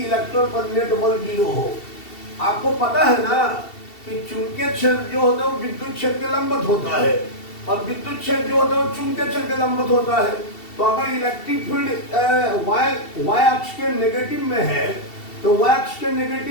पर नेट बल 0 हो। आपको पता है ना कि चुंबकीय क्षेत्र जो होता है वो विद्युत क्षेत्र के लंबवत होता है और विद्युत क्षेत्र जो होता है वो चुंबकीय क्षेत्र के लंबवत होता है। तो अगर इलेक्ट्रिक फील्ड वाय अक्ष के नेगेटिव में है तो वाय अक्ष के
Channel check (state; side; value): late; right; 2.7 ms